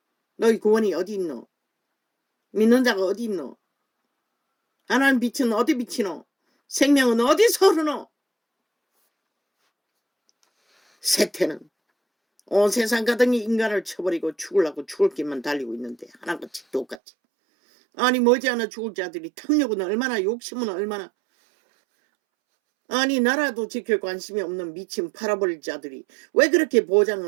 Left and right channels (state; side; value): drops out; left; at 17.0 s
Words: 너희 구원이 어디 있노? 믿는 자가 어디 있노? 하나님 빛은 어디 비치노? 생명은 어디서 흐르노? 세태는 온 세상 가득히 인간을 쳐버리고 죽으려고 죽을 길만 달리고 있는데 하나같이 똑같이. 아니 머지않아 죽을 자들이 탐욕은 얼마나, 욕심은 얼마나. 아니 나라도 지킬 관심이 없는 미친 팔아버릴 자들이 왜 그렇게